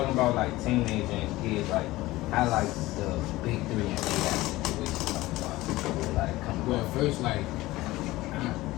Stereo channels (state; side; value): quieter; right; 18.4 dB